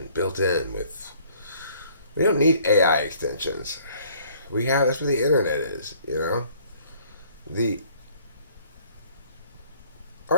built in with. We don't need AI extensions. That's what the internet is, you know? The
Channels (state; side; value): inverted; both; correlation -0.59